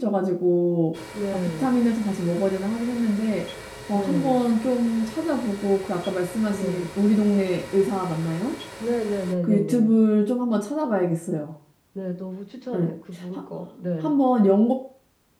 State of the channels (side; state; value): both; identical; correlation 1.00